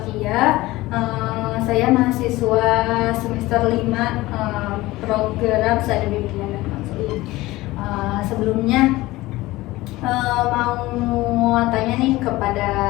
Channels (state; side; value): quieter; right; 18.8 dB